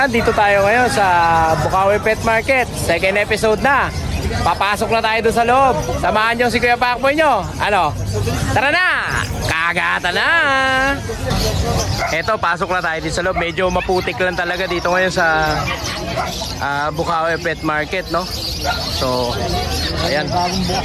dito tayo ngayon sa Bukawi Pet Market. Second episode na. Papasok na tayo doon sa loob. Samahan nyo si Kuya Pacboy nyo. Ano? Tara na! Kagata na! Eto, pasok na tayo dito sa loob. Medyo maputik lang talaga dito ngayon sa Bukawi Pet Market, no? So, ayan.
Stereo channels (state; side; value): identical; both; correlation 1.00